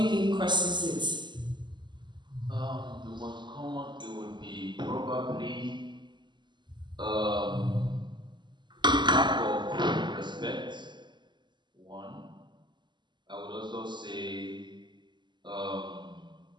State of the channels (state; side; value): late; left; 0.22 ms